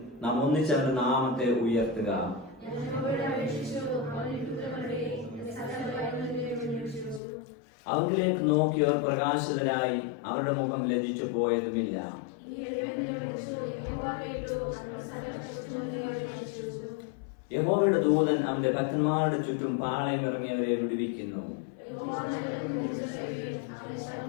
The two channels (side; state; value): right; drops out; at 7.2 s